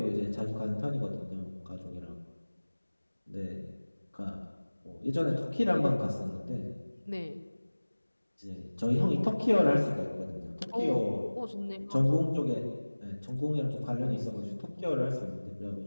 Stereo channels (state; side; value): inverted; both; correlation -1.00